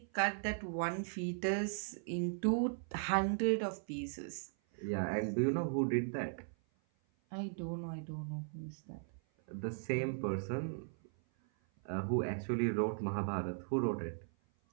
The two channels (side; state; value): left; silent; 53 dB below the other